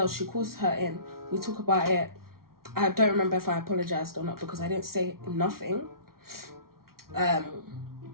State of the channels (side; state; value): left; late; 0.93 ms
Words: she calls her in. We talk about it. I don't remember if I apologized or not because I didn't say nothing.